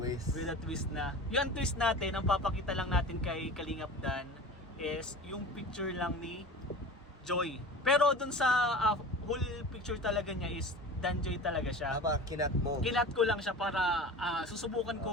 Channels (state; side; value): normal; both; correlation 0.35